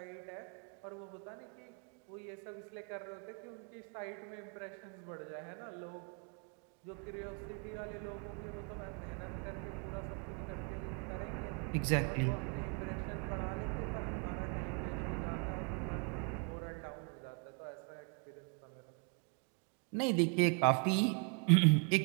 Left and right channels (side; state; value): left; quieter; 38.1 dB